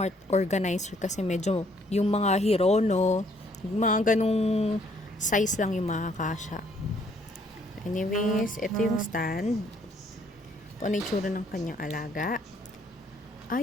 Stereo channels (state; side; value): normal; both; correlation 0.65